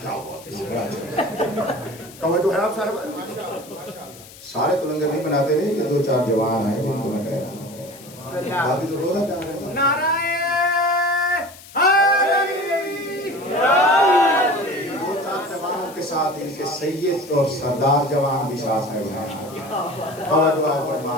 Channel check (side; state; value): left; noise; hiss, 19 dB below the sound